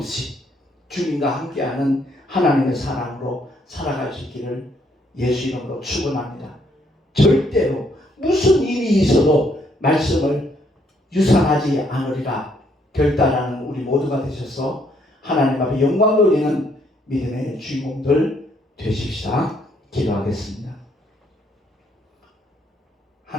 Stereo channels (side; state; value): both; normal; correlation 0.70